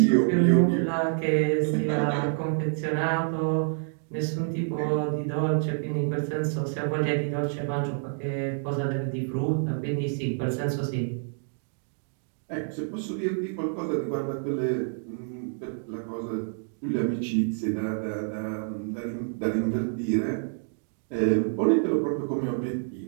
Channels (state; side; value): silent; left; digital silence